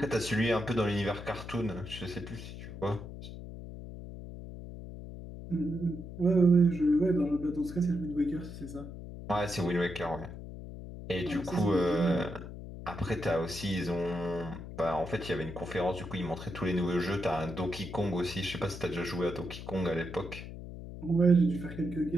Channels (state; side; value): noise; left; hum, 11 dB below the sound